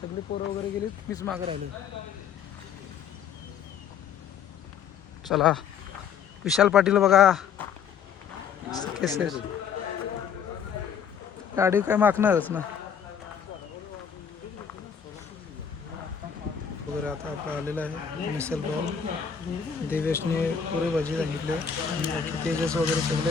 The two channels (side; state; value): right; quieter; 7.3 dB